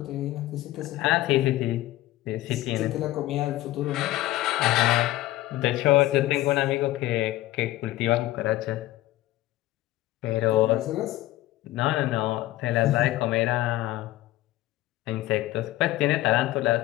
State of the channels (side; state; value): right; quieter; 16.2 dB